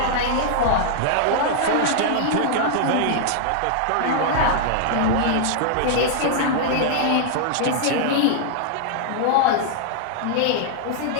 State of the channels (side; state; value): both; different; correlation -0.01